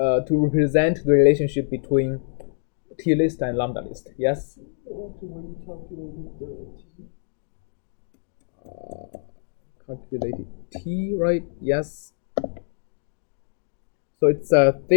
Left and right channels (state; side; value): silent; right; digital silence